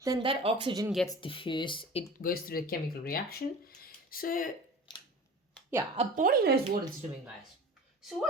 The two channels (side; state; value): both; normal; correlation 0.38